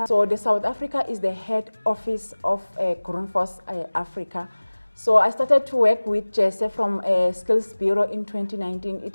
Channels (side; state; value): both; inverted; correlation -1.00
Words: So the South Africa is the head office of Grundfos Africa. So I started to work with Jesse from Skills Bureau in 2019.